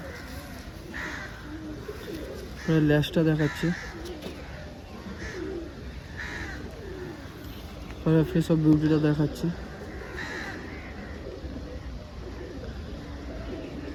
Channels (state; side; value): identical; both; correlation 1.00